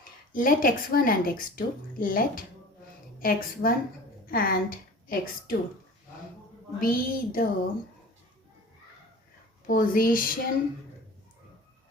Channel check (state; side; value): normal; both; correlation 0.41